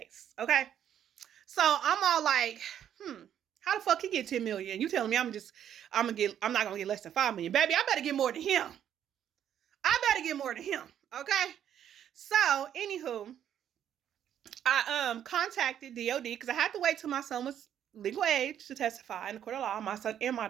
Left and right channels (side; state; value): left; quieter; 9.9 dB